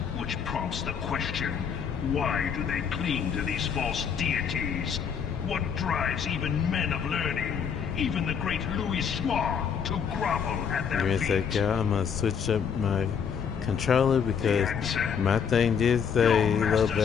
which prompts the question, why do they cling to these false deities? What drives even men of learning, even the great Louis Soir, to grovel at their Give me a feet? sec, y'all. I'm gonna switch up my controller because my thing did say low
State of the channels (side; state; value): right; quieter; 7.1 dB